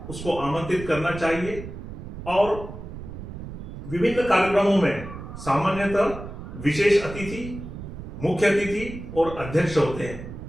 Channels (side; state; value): right; noise; rumble, 10 dB below the sound